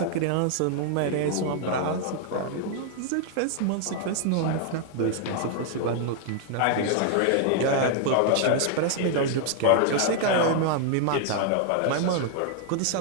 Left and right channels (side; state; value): both; different; correlation 0.00